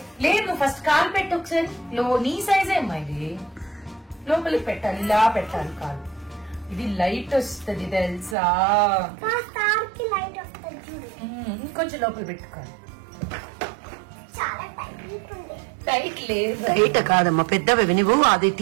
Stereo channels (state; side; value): drops out; left; at 8.3 s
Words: లేదు? ఫస్ట్ కాలు పెట్టు ఒకసారి. నీ సైజ్ ఏమ్మా ఇది? లోపలికి పెట్టాలి, ఇలా పెట్టాలి కాలు. ఇది లైట్ వస్తుంది తెలుసా? ఇంకొంచెం లోపల పెట్టుకోవాలి. టైట్ లేదు. టైట్ కాదమ్మా, పెద్దవి నువ్వు అది